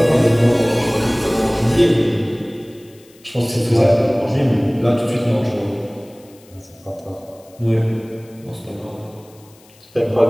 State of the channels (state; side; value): noise; left; hiss, 28 dB below the sound